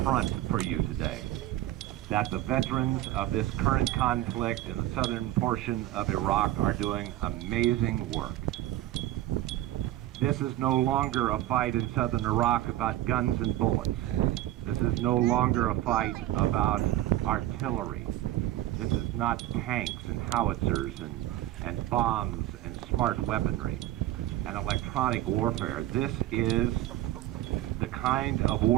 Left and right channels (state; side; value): quieter; left; 14.6 dB